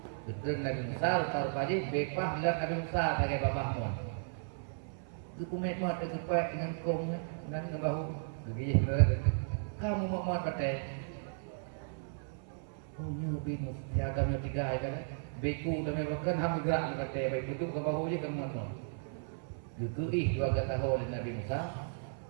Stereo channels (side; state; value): left; silent; 54 dB below the other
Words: taruh pagi bepah lihat Nabi Musa sebagai babah mon kumet mat kepek dengan kong dan dengan bahu begini kamu mau mat kata oh nyubi siagamnya tiga kan beku dan bahkan ham gerak kata baik itu ke bahu je kamu mat Gugui dua kata oleh Nabi Musa